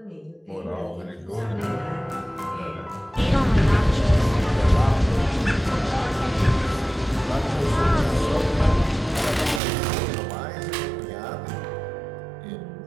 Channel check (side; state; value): left; drops out; at 9.6 s